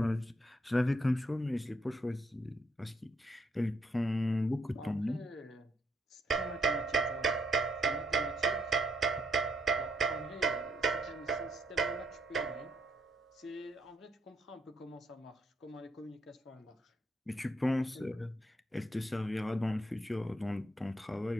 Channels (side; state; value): both; normal; correlation 0.74